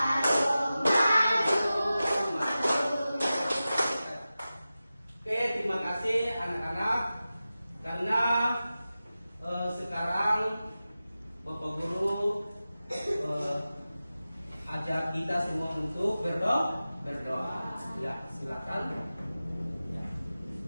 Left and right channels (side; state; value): both; inverted; correlation -0.95